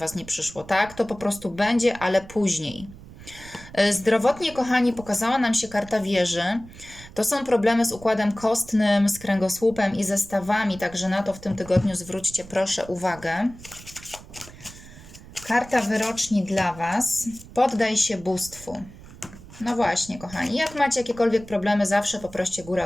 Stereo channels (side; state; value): right; noise; rumble, 18 dB below the sound